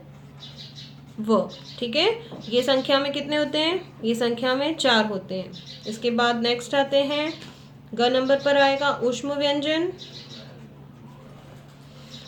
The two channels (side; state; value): both; identical; correlation 1.00